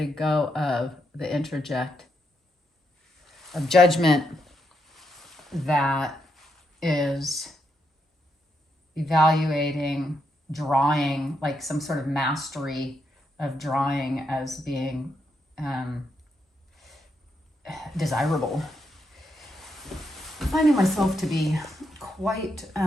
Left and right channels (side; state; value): both; normal; correlation 0.80